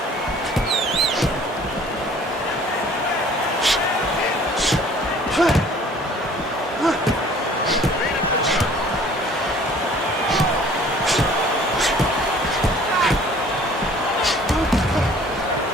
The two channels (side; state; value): both; normal; correlation 0.52